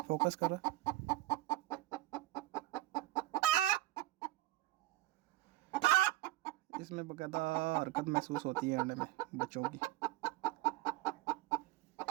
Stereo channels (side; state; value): left; quieter; 16.7 dB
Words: फोकस करो। इसमें बाकायदा हरकत महसूस होती है अंडे में बच्चों की।